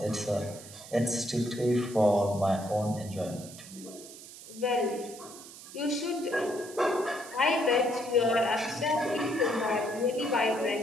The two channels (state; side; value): noise; right; hiss, 16 dB below the sound